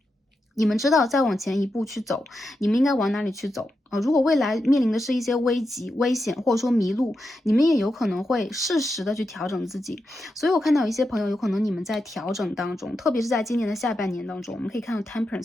你们知道再往前一步去走，你们应该往哪里去走如果未来面临的是一些危急、危险，或者说迷路，你们也有可能会适时的去调整自己。所以我看到有一些朋友，有可能你们在调整当中，特别是在今年的下半年当中，我们可以看到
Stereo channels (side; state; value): both; normal; correlation 0.87